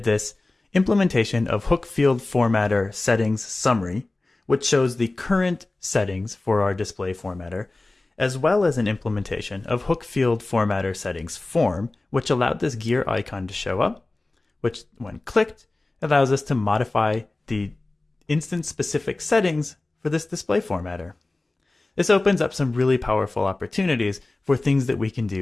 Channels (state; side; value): quieter; right; 3.0 dB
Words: this implementation of hook field formatter settings summary, which shows the current settings for our display formatter, as well as an implementation of hook field formatter settings form, which allowed this gear icon to show up, which when clicked allows us to modify the instance specific settings for this display formatter. This opens up some really powerful opportunities for things that we can